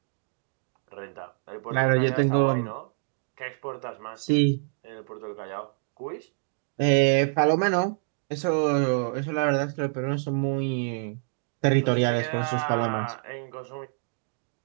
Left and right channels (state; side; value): silent; left; digital silence